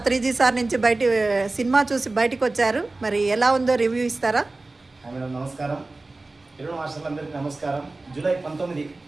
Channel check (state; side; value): quieter; left; 3.2 dB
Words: సార్ నుంచి సినిమా చూసి బయటికి వచ్చారు. మరి ఎలా ఉందో రివ్యూ ఇస్తారా? మేడం నమస్కారం. తెలుగు మాస్టర్లందరికీ నమస్కారం. జూలై 19